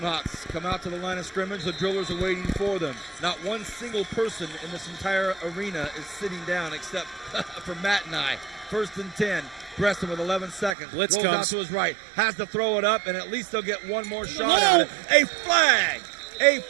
Hawks come out to the line of scrimmage. The Drillers are waiting for them. Not one single person in this entire arena is sitting down except for Matt and I. 1st and 10. Bresson with 11 seconds. Blitz Rolls comes out to his right. Has to throw it up, and at least they'll get one more shot at it. A flag! A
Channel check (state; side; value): drops out; left; at 10.8 s